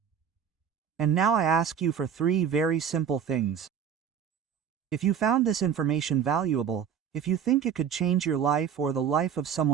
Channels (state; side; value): quieter; left; 8.0 dB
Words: And now I ask you for 3 very simple things. If you found this information valuable, if you think it could change your life or the life of